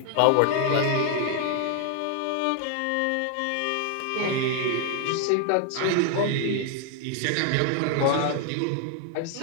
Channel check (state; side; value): different; both; correlation 0.00